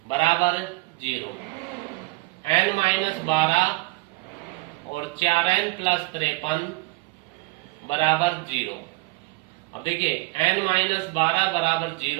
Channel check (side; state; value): left; quieter; 23.2 dB